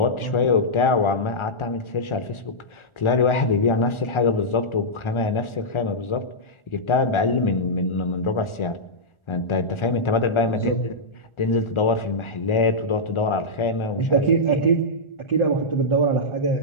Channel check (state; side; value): late; right; 1.4 ms